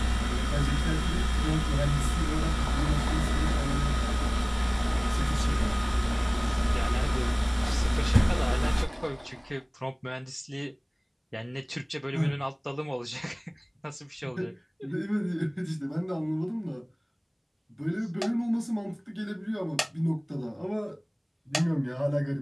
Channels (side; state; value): both; identical; correlation 1.00